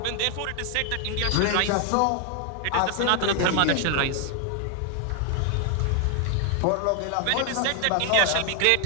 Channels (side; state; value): both; different; correlation 0.00